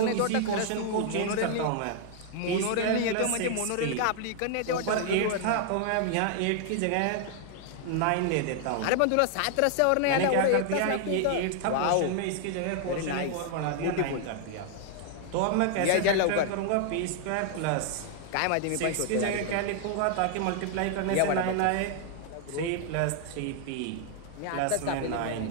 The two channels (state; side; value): different; both; correlation 0.00